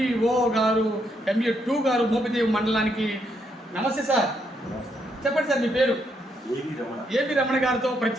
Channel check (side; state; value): both; normal; correlation 0.76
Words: గారు, MU2 గారు, మోపిదేవి మండలానికి. నమస్తే సార్. చెప్పండి సార్, మీ పేరు? ఏబి రమణ గారితో